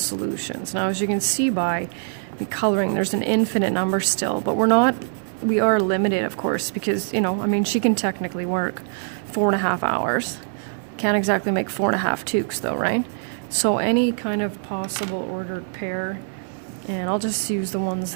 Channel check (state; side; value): silent; left; 60 dB below the other